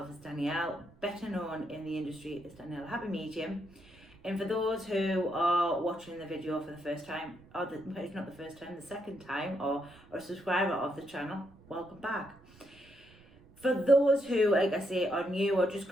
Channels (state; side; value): noise; right; rumble, 25 dB below the sound